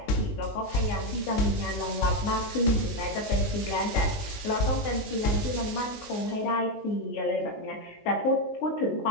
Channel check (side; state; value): right; late; 19 ms